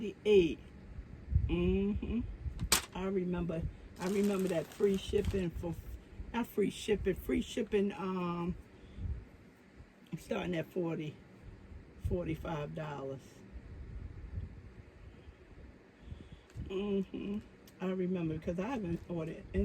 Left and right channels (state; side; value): identical; both; correlation 1.00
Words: I remember that free shipping for not free shipping starting at $45. I remember because I haven't ordered